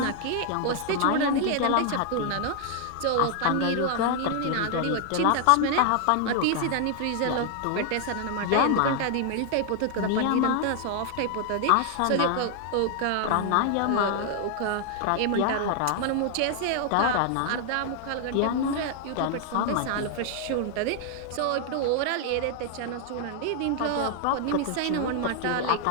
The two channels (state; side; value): different; both; correlation 0.00